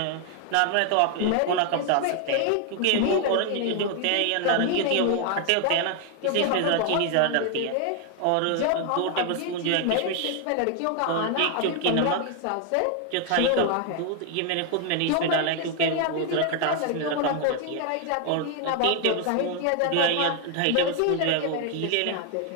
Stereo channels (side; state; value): both; different; correlation 0.00